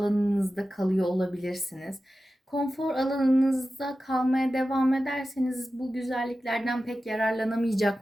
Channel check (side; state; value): both; normal; correlation 0.94